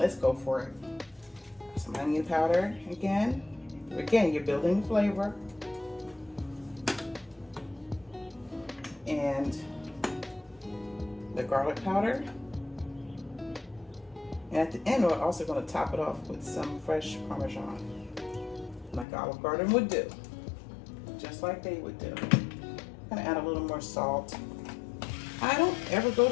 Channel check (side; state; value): right; drops out; at 19.1 s